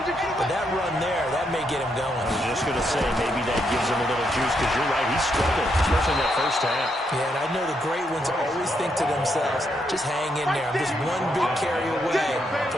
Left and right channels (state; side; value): normal; both; correlation 0.78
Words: but that run there, that may get him going. I was just going to say, maybe that gives him a little juice, because you're right, he struggled, especially in that first half. Yeah, and I know the great ones always think to themselves, just hang in there. I'm just one big carry away